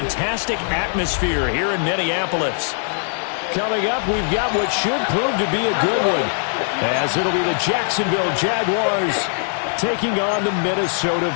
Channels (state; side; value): silent; right; 65 dB below the other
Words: atmosphere here in Minneapolis. Coming up, we've got what should prove to be a good one, as it'll be the Jacksonville Jaguars taking on the Minnesota